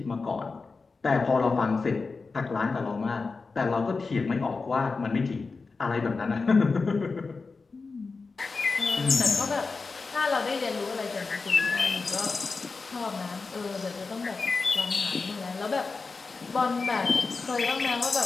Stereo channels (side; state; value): right; quieter; 4.3 dB